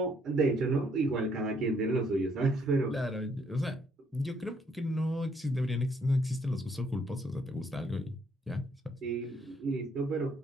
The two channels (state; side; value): normal; both; correlation 0.69